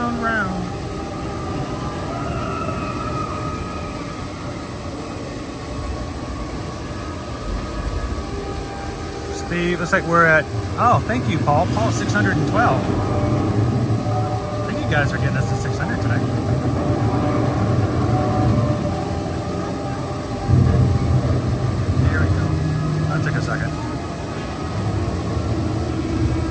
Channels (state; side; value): identical; both; correlation 1.00